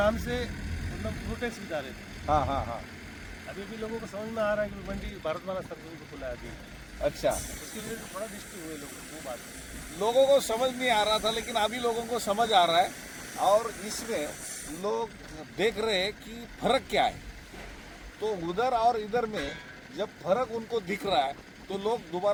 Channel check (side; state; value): both; identical; correlation 1.00